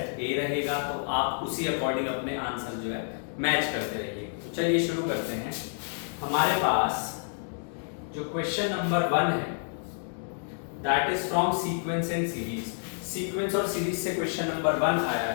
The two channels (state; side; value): silent; right; digital silence